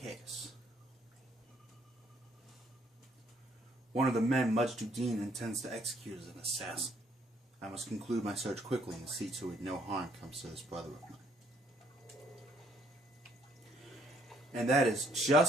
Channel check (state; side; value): normal; both; correlation 0.67